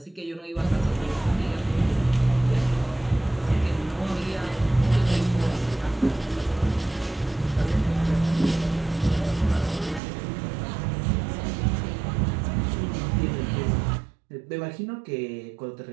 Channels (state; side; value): drops out; left; at 10.0 s